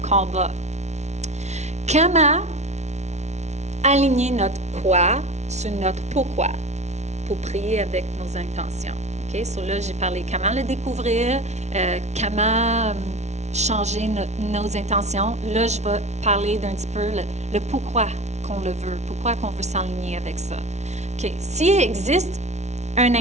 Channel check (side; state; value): left; late; 0.32 ms